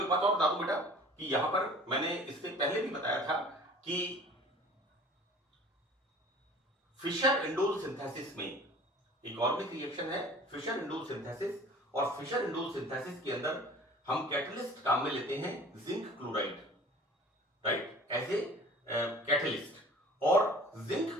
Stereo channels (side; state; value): both; normal; correlation 0.46